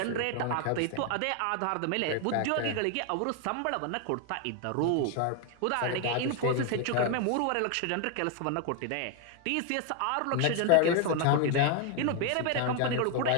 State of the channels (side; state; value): both; different; correlation 0.01